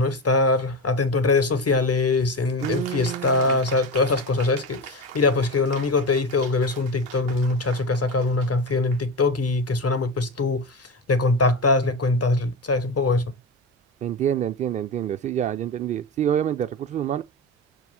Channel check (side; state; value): both; normal; correlation 0.21